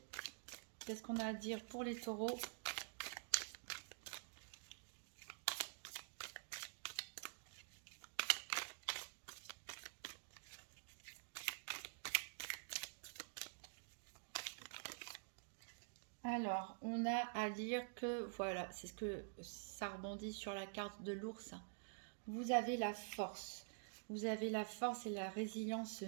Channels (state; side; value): silent; left; digital silence